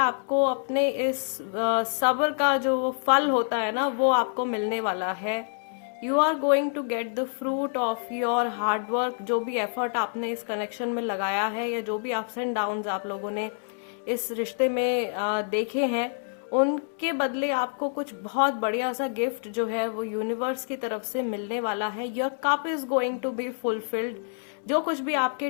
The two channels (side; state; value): right; silent; digital silence